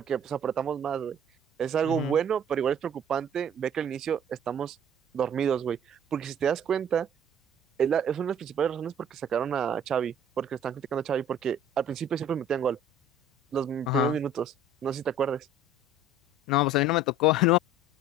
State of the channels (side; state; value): both; normal; correlation 0.50